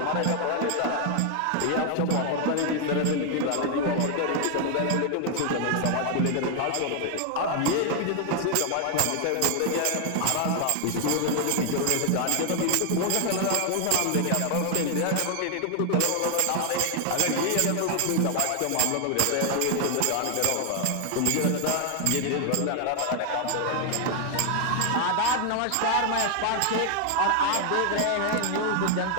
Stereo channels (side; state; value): both; different; correlation 0.00